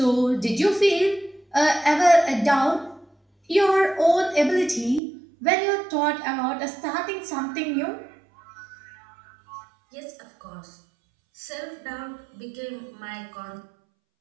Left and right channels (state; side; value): drops out; left; at 5.0 s